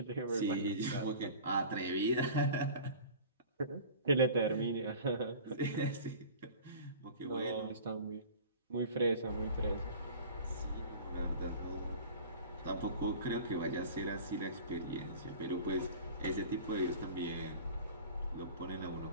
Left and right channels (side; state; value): both; inverted; correlation -0.40